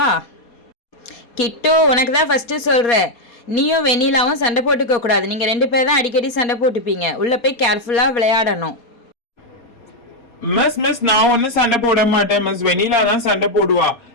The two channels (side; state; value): right; late; 4.2 ms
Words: கிட்டு, உனக்கு தான் ஃபஸ்ட்டு சொல்கிறேன், நீயும் வெண்ணிலாவும் சண்டை போட்டுக்க கூடாது. நீங்கள் 2 பேர் தான் அடிக்கடி சண்டை போட்டுப்பீங்க. உள்ளே போய் கேர்ஃபுல்லாக விளையாடணும். மிஸ் நான் ஒன்னும் சண்டை போட மாட்டேன் மிஸ். வெண்ணிலா தான் சண்டை போடுவா.